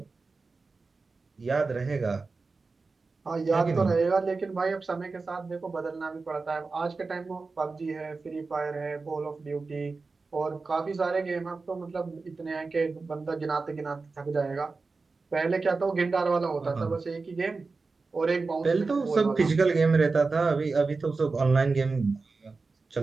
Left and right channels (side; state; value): left; quieter; 4.1 dB